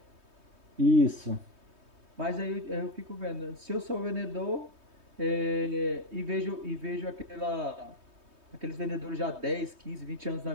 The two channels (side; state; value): left; late; 3.2 ms